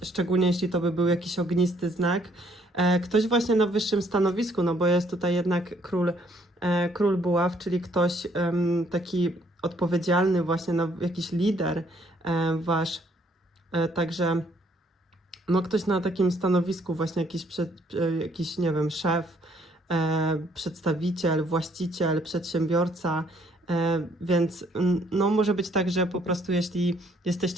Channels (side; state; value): both; normal; correlation 0.66